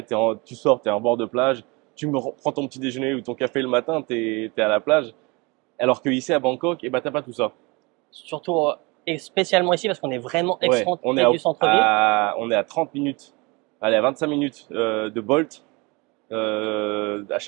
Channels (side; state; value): left; quieter; 26.8 dB